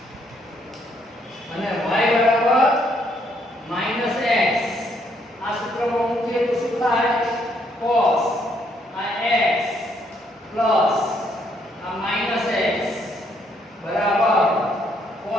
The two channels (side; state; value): both; normal; correlation 0.71